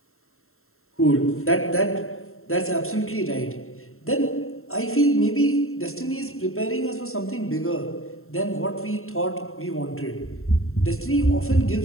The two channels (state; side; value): late; right; 0.62 ms